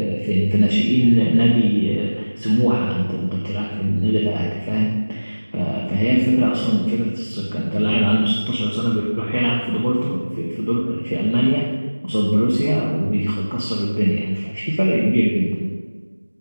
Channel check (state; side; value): inverted; both; correlation -1.00